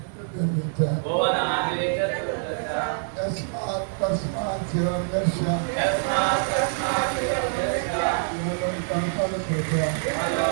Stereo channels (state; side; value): silent; left; digital silence